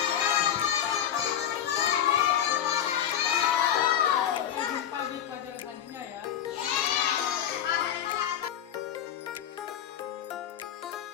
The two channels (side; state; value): right; quieter; 10.1 dB